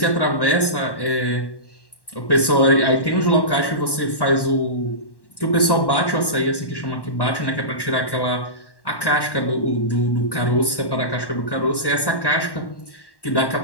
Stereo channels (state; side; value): late; right; 1.1 ms